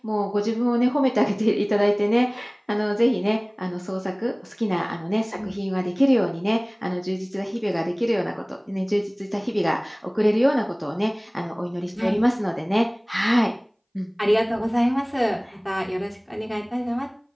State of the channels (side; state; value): both; identical; correlation 1.00